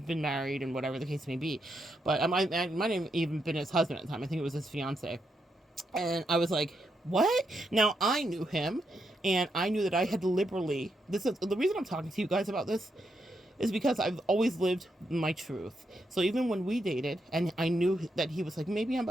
married and whatever the case may be, but I might have even been his husband at the time. I think it was his fiance. And I was like, what? Now, I knew him, and I knew that I had liberally, this is the reason I'm talking to you guys about this, is because I've always lived my truth. So even when we dated, and I knew that he was like, maybe I'm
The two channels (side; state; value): both; normal; correlation 0.81